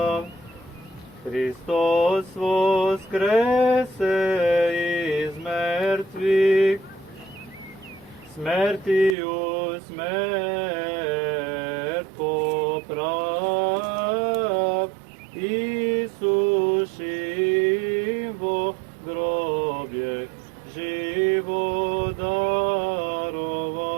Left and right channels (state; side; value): drops out; left; at 9.2 s